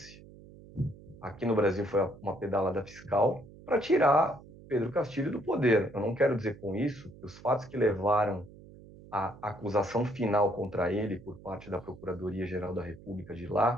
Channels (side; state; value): right; noise; hum, 20 dB below the sound